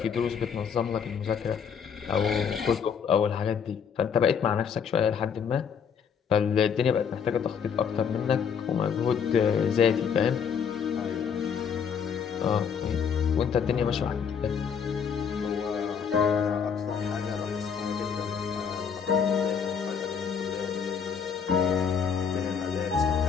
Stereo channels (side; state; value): right; quieter; 6.9 dB